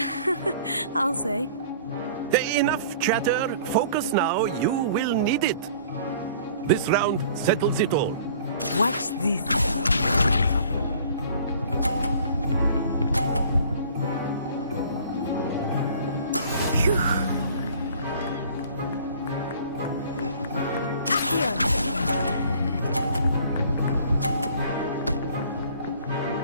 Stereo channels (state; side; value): inverted; both; correlation -0.51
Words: I'll say. Enough chatter. Focus now. You will need it. This round settles it all. Watch this. Phew. Accio!